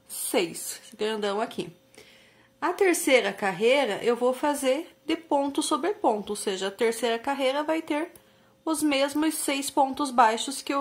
6. Esse grandão aqui. A terceira carreira, eu vou fazer de ponto sobre ponto, ou seja, a terceira carreira vai ter os mesmos 6 pontos baixos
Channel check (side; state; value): both; identical; correlation 1.00